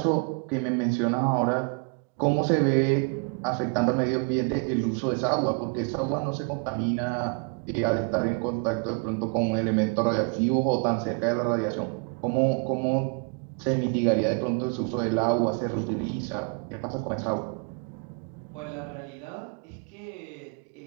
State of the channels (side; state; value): left; quieter; 36.3 dB